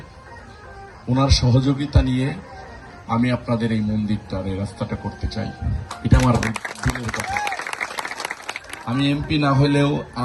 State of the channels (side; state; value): both; identical; correlation 1.00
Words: ওনার সহযোগিতা নিয়ে আমি আপনাদের এই মন্দিরটার এই রাস্তাটা করতে চাই। এটা আমার দিলের কথা। আমি এমপি না হলেও